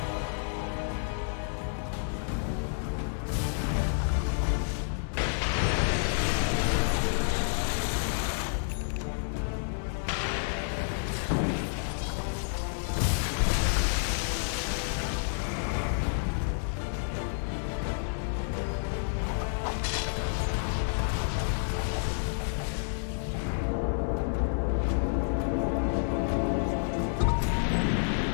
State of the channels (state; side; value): silent; right; digital silence